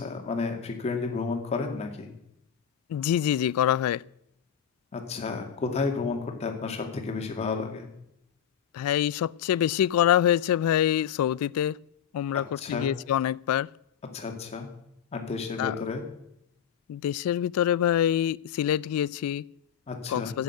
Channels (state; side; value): quieter; right; 8.8 dB